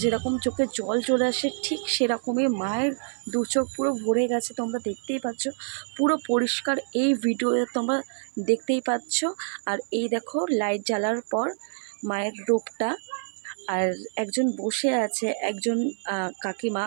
যেরকম চোখে জল চলে আসে, ঠিক সেরকমই মায়ের দু চোখ পুরো ভরে গেছে। তোমরা দেখতেই পাচ্ছ, পুরো পরিষ্কার এই ভিডিওতে তোমরা দেখতেই পাচ্ছ। আর এই দেখো লাইট জ্বালার পর মায়ের রূপটা, আর একজন বসে আছে, একজন কাকিমা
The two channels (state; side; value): silent; left; 56 dB below the other